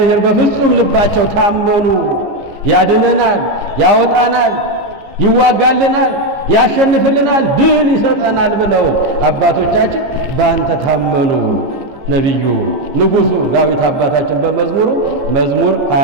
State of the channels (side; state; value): left; late; 15 ms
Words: በፍጹም ልባቸው ታመኑ። ያድነናል፣ ያወጣናል፣ ይዋጋልናል፣ ያሸንፍልናል፣ ድል ይሰጠናል ብለው አባቶቻችን በአንተ ታመኑ። ነቢዩ ንጉሡ ዳዊት አባታችን በመዝሙሩ መዝሙር